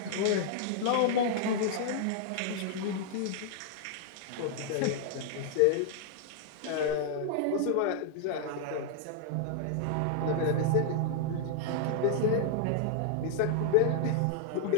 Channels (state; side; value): different; both; correlation -0.01